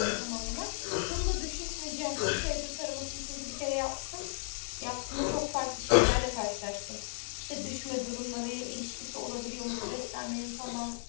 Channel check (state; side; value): silent; right; digital silence